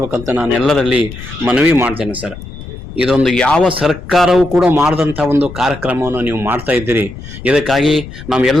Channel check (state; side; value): noise; left; rumble, 13 dB below the sound